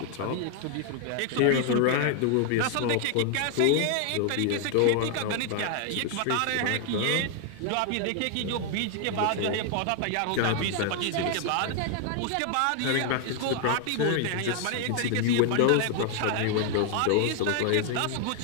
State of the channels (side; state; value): both; different; correlation 0.00